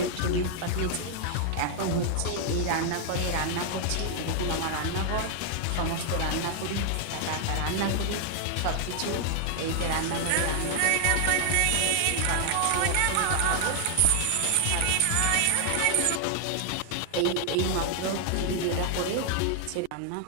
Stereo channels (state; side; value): different; both; correlation 0.00